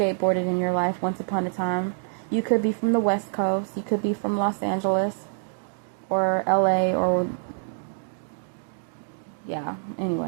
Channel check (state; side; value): silent; left; digital silence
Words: in your life once upon a time. You could be from the West Coast. You could be from Los Angeles or LA or... yeah,